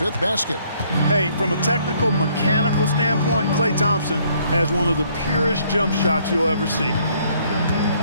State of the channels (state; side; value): inverted; both; correlation -0.65